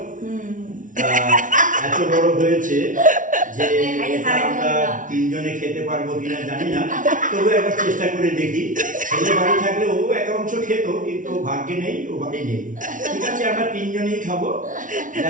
এত বড় হয়েছে যে এটা আমরা তিনজনে খেতে পারবো কিনা জানি না, তবু একবার চেষ্টা করে দেখি। ছেলে বাড়ি থাকলে ও এক অংশ খেত, কিন্তু ভাগ্যে নেই, ও বাড়ি নেই। ঠিক আছে, আমরা তিনজনেই খাবো,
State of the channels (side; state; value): left; late; 0.38 ms